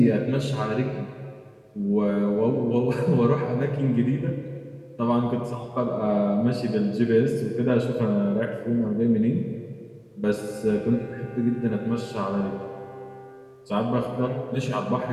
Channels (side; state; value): both; identical; correlation 1.00